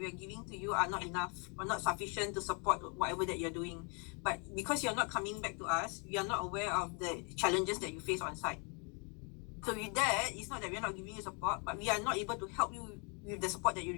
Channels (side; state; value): right; quieter; 35.6 dB